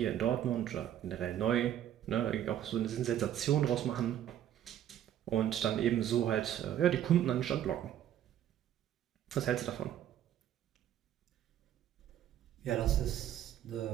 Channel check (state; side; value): quieter; left; 11.0 dB